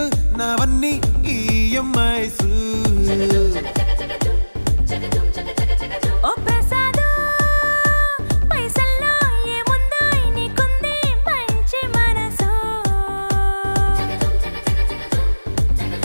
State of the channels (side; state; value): both; inverted; correlation -1.00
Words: నావన్నీ ఈఎంఐస్ ఓ ప్రసాదు పైసల్లో ఏముందో నీకుంది మంచి మనసు